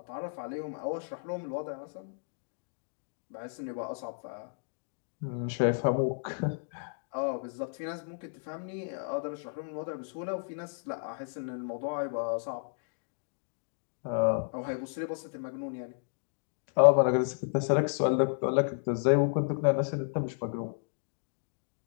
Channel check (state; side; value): silent; right; digital silence